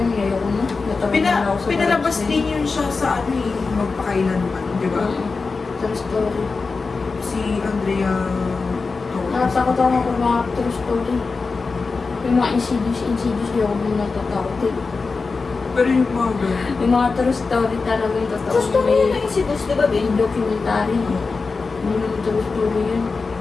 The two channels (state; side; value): quieter; right; 4.3 dB